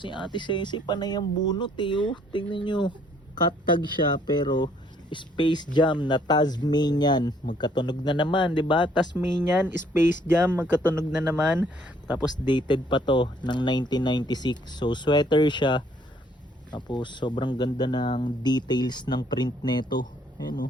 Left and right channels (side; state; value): both; normal; correlation 0.64